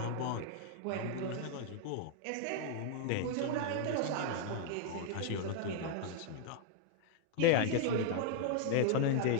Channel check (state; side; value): different; both; correlation -0.01